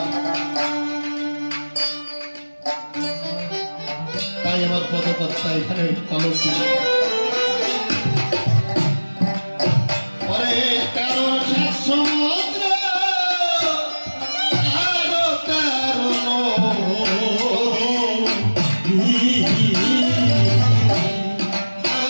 তাই আমার পদকর্তা এখানে কলম দিল, পরে 13 সাত সমুদ্র আরো 13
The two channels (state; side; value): inverted; both; correlation -1.00